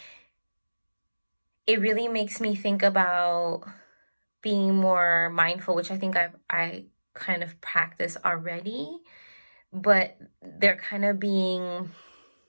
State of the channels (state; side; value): inverted; both; correlation -1.00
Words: it really makes me think about being more mindful, which I think I kind of practice already, but they're kind of being